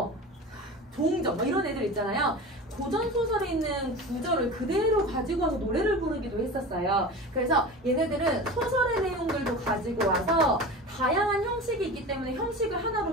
동정 뭐 이런 애들 있잖아요. 고전 소설에 있는 구절을 그대로 가지고 와서 노래를 부르기도 했었어요. 그래서 얘네들은 소설의 내용들도 가지고 와서 다양한 형식이 있기 때문에 형식을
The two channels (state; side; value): normal; both; correlation 0.32